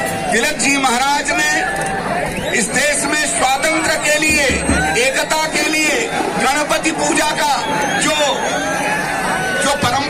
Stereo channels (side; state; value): both; identical; correlation 1.00